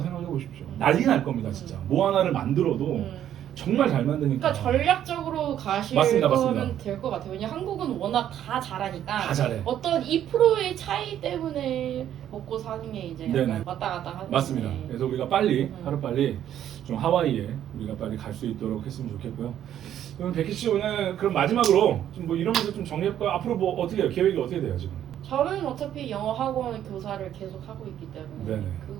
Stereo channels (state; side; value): quieter; left; 10.8 dB